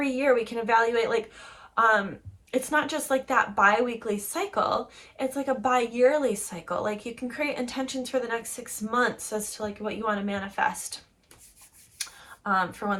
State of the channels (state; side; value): identical; both; correlation 1.00